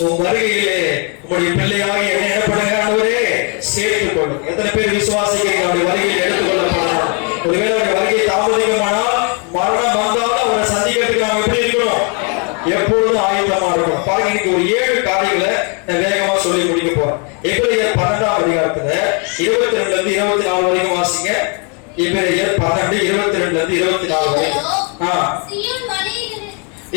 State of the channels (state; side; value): quieter; right; 36.5 dB